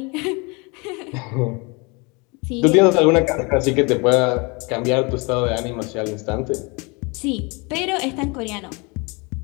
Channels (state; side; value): quieter; right; 29.0 dB